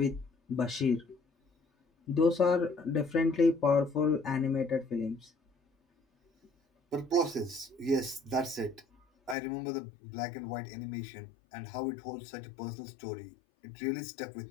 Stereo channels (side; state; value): right; drops out; at 9.3 s